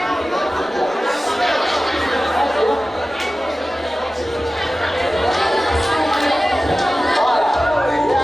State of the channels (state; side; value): normal; both; correlation 0.96